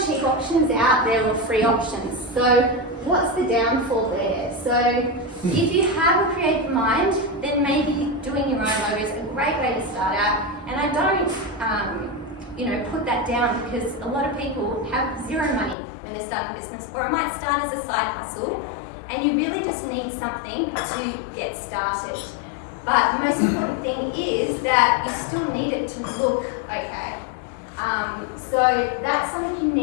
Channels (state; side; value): drops out; right; at 15.8 s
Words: cheap options out there or free options. So what's the downfall there? So if you have a creative mind, then maybe doing your own logo is a great way to start out. And I don't, you know, put that down, because a lot of people have zero money when they're starting a business, or it might start as a side hustle, and you really just need something to get started. But the most important thing is that you still need it to look okay. So that's something you